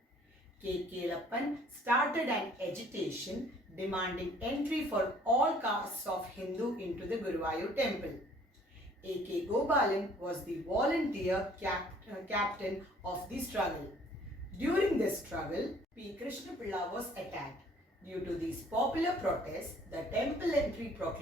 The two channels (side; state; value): both; normal; correlation 0.57